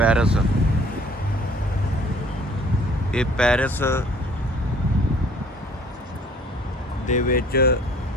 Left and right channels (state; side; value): normal; both; correlation 0.55